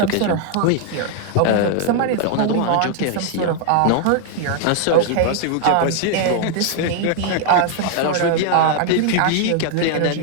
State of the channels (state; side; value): different; both; correlation 0.00